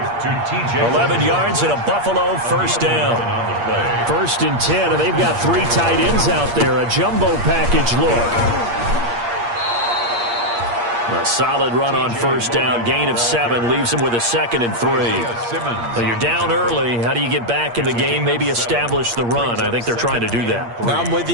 11 yards and a Buffalo first down. 1st and 10, and they've got 3 tight ends out there. A jumbo package look. A solid run on first down. Gain of 7 leaves them with a 2nd and 3. Well, you're down early. How do you get back in the game? Maybe establish the run. I think they're trying to do that. Now, I'm with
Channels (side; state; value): left; late; 8.5 ms